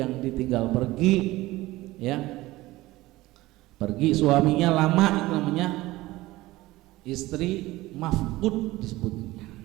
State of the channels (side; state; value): left; quieter; 18.5 dB